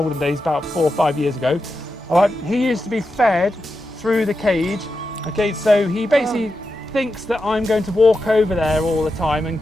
about 4 or 5 years ago, alright, he used to be fed through the cage. Okay, so he basically thinks that I'm going to walk over there all the time and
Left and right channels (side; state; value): both; normal; correlation 0.89